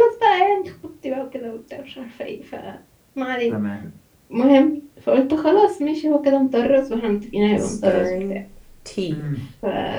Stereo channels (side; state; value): both; identical; correlation 1.00